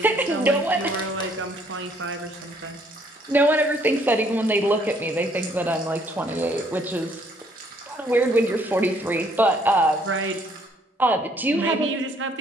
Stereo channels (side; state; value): both; normal; correlation 0.65